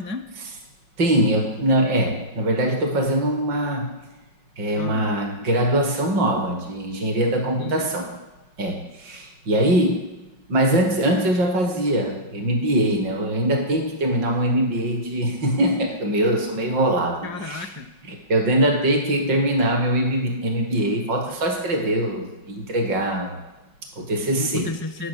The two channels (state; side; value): late; left; 5.4 ms